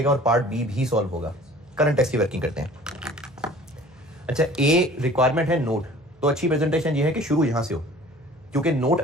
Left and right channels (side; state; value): right; noise; hum, 30 dB below the sound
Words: और पार्ट बी भी सॉल्व होगा। करंट टैक्स की वर्किंग करते हैं। अच्छा, ए रिक्वायरमेंट है नोट, तो अच्छी प्रेजेंटेशन ये है कि शुरू यहां से हो, क्योंकि नोट